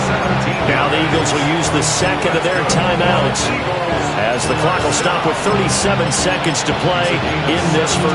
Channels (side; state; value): both; identical; correlation 1.00